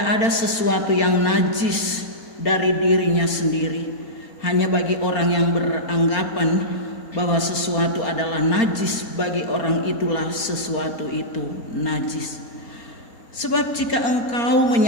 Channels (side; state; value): right; late; 4.3 ms